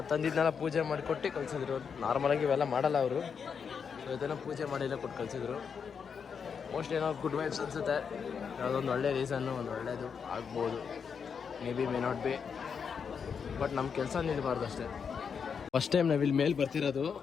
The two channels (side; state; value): right; quieter; 6.5 dB